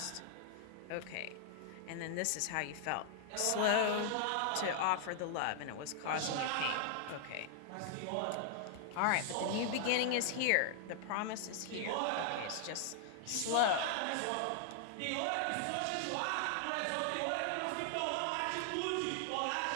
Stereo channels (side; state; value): both; different; correlation 0.00